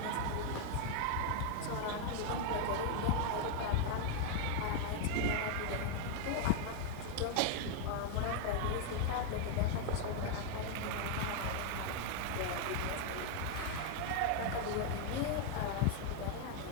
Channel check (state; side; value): different; both; correlation 0.00